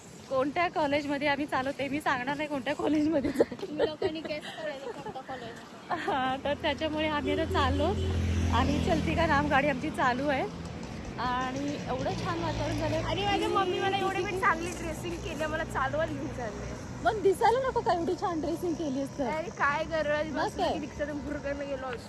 कोणत्या कॉलेजमध्ये आम्ही चाललो ते मी सांगणार नाही कोणत्या कॉलेजमध्ये हां, तर त्याच्यामुळे आम्ही आता चाललो आणि चलती का नाम गाडी आमची चालू आहे आणि एवढं छान वातावरण झालं. आणि माझ्या मम्मी मला एवढी मी चांगली ड्रेसिंग केली, मला चालवत घेऊन चालले. पण दिसायला नको का एवढी छान ड्रेसिंग केली असतं. अरे काय गरज, मग काय? रिक्षातून भुरकन गेलो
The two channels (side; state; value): both; identical; correlation 1.00